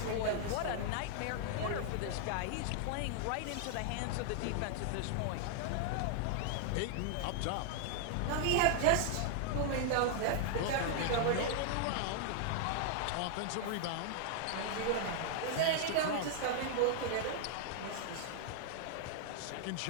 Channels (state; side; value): different; both; correlation 0.00